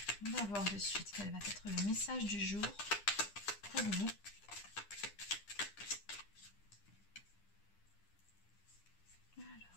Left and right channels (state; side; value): late; right; 10 ms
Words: on va voir de suite quel va être le message du jour pour vous.